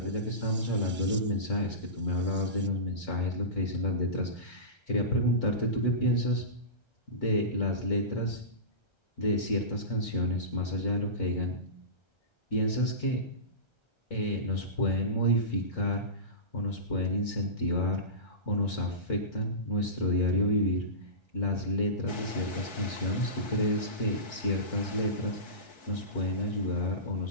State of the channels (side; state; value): right; late; 1.3 ms